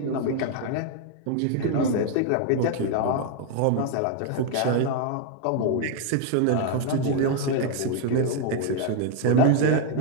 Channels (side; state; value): both; different; correlation 0.00